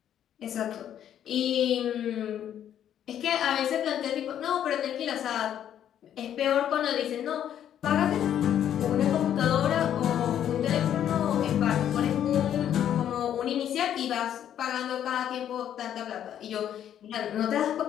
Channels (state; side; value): quieter; right; 10.2 dB